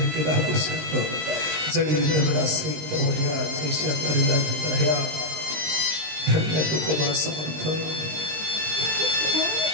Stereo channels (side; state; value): left; late; 19 ms